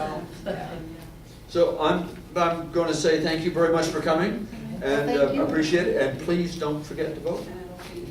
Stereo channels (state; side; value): identical; both; correlation 1.00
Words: yeah. So I'm going to say thank you very much for coming, and Thank you. appreciate it, and please don't forget to vote.